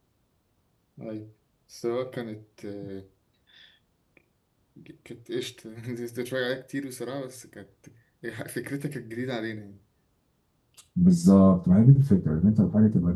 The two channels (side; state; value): both; identical; correlation 1.00